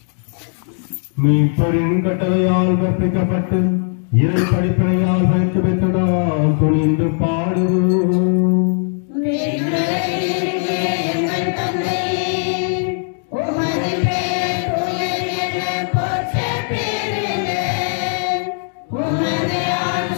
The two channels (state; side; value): silent; right; 56 dB below the other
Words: மீட்பரின் கட்டளையால் கற்பிக்கப்பட்டு இறை படிப்பினையால் பயிற்சி பெற்று நாம் துணிந்து பாடுவோம்.